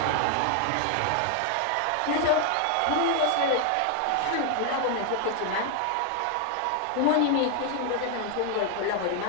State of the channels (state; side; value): different; both; correlation 0.00